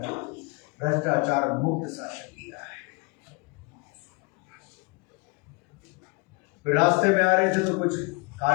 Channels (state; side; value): quieter; right; 28.7 dB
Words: भ्रष्टाचार मुक्त शासन दिया है। फिर रास्ते में आ रहे थे तो कुछ